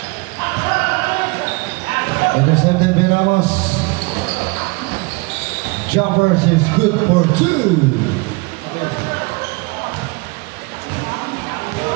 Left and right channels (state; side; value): quieter; left; 26.8 dB